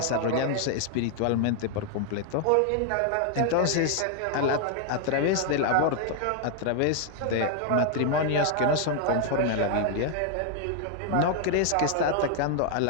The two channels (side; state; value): both; different; correlation 0.00